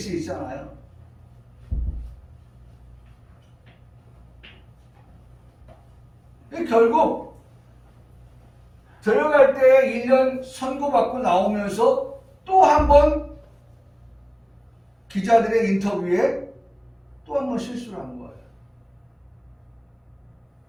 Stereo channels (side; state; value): both; identical; correlation 1.00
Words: 있잖아요. 결국 들어갈 때 1년 선고받고 나오면서 또 한 번 기자들의 인터뷰에 또 한 번 실수를 한 거예요.